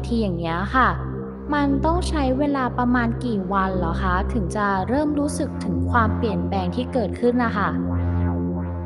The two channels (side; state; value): both; identical; correlation 1.00